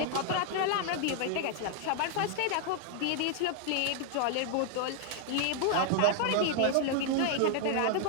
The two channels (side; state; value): both; different; correlation 0.00